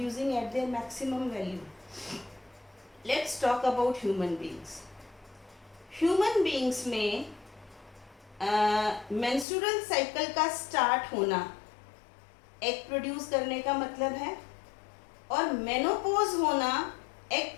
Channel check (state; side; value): drops out; right; at 9.5 s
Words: at their maximum value? Let's talk about human beings. Human beings में menstrual cycle का start होना egg produce करने का मतलब है, और menopause होना egg